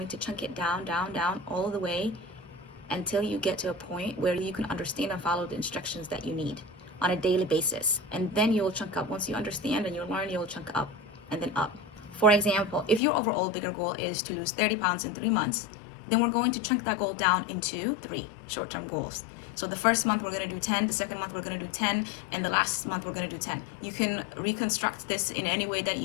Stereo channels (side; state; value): right; drops out; at 13.0 s